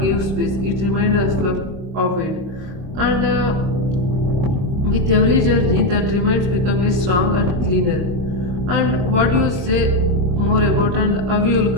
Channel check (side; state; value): left; late; 22 ms